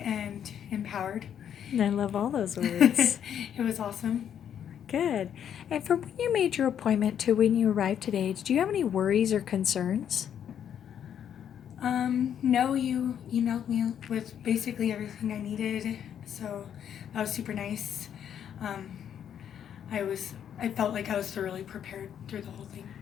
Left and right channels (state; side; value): quieter; right; 9.1 dB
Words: and empowered. I love all those words. It was awesome. Good. And from when you made your appointment to when you arrived today, did you have any worries or concerns? No, you emailed me with basically everything I needed, so that was super nice. Um, I felt like I was thoroughly prepared through the whole thing.